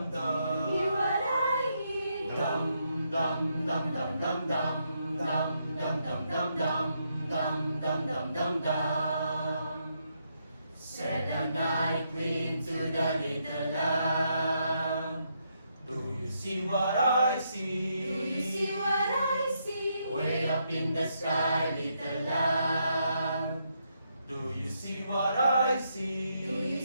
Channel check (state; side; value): inverted; both; correlation -0.78